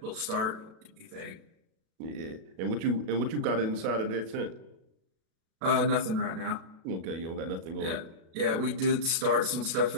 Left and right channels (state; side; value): late; left; 37 ms